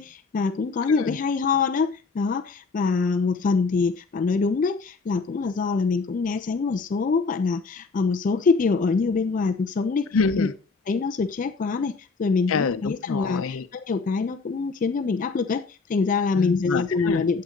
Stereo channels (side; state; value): right; quieter; 4.3 dB